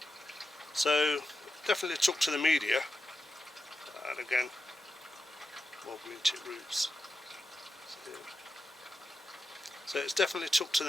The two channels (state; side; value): normal; both; correlation 0.89